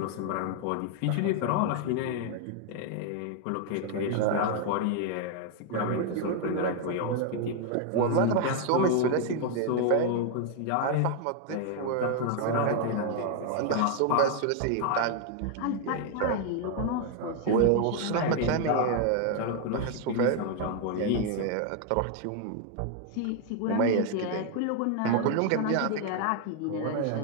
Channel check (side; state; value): both; different; correlation 0.00